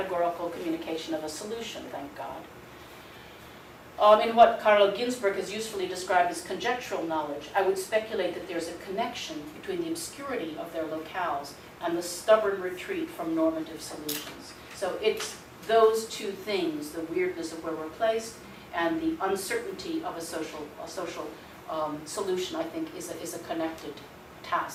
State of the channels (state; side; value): identical; both; correlation 1.00